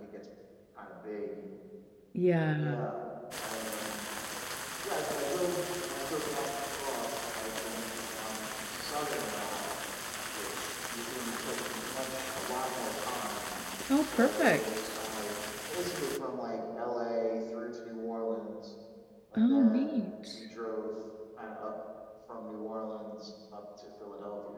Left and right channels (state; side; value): identical; both; correlation 1.00